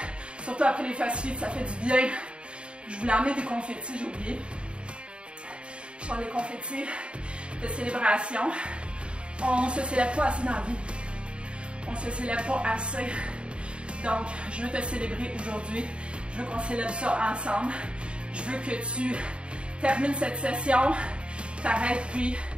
Surtout après les fast feet, ça fait du bien. Je voulais emmener des confettis, j'ai oublié. Je prends des confettis de célébration. On se célèbre pas assez dans la vie. On se célèbre pas assez. Donc, je veux te célébrer aujourd'hui. Je veux qu'on célèbre ça ensemble. Je veux que tu termines cette session, t'arrêtes puis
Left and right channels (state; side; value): late; left; 0.055 ms